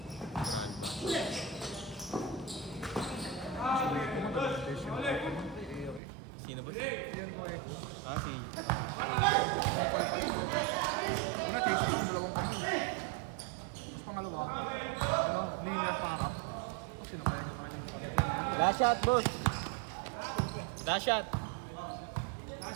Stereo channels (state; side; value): drops out; left; at 6.0 s